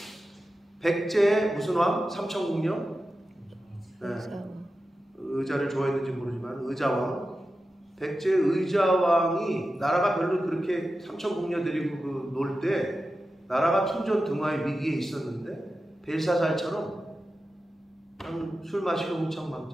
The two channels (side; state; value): both; normal; correlation 0.92